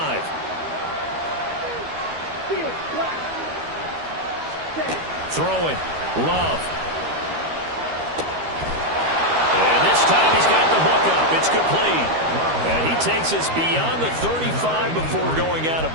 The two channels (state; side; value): late; left; 13 ms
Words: Throwing. Love. And this time he's got the hook up. It's complete. And he takes us beyond the 35 before going out